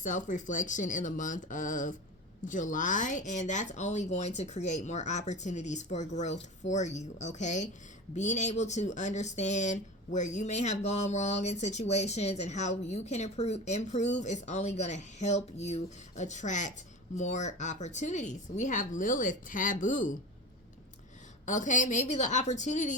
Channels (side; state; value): both; normal; correlation 0.30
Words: in the month of July, and that's only going to create more opportunities for growth for you. Okay, being able to understand where you may have gone wrong in situations and how you can improve is only going to help you attract more opportunities. We have Lilith, taboo. Okay, maybe the